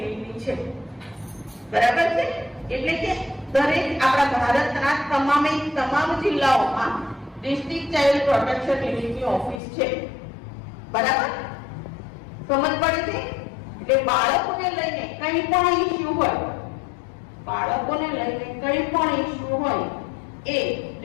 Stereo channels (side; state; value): right; drops out; at 9.6 s